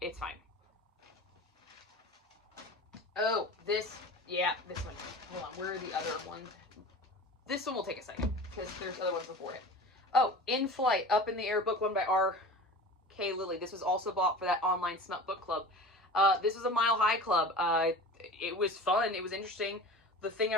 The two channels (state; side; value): normal; both; correlation 0.36